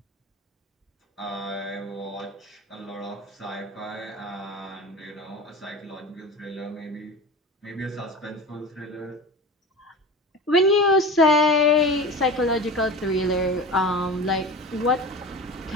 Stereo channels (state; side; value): normal; both; correlation 0.32